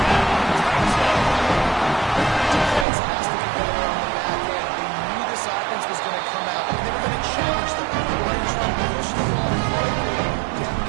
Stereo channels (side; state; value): left; drops out; at 2.9 s